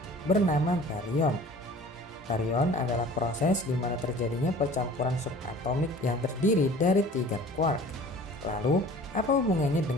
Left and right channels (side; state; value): both; normal; correlation 0.46